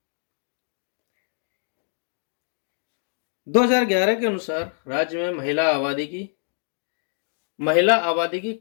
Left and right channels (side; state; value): right; silent; digital silence